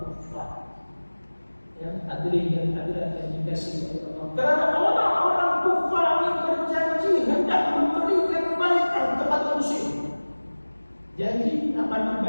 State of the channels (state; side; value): inverted; both; correlation -1.00